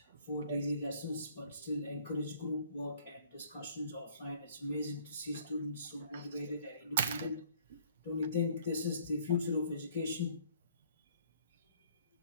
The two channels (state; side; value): inverted; both; correlation -0.59